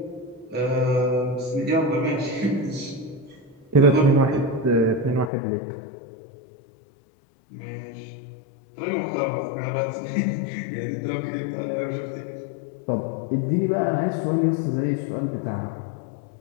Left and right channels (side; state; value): right; drops out; at 5.3 s